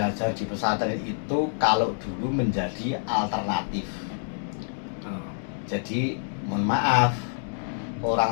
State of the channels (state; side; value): silent; right; 60 dB below the other